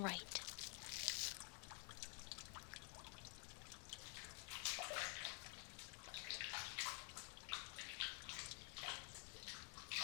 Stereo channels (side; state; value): right; quieter; 39.0 dB